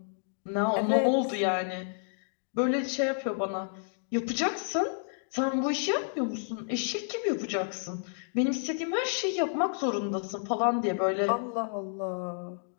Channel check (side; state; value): right; silent; digital silence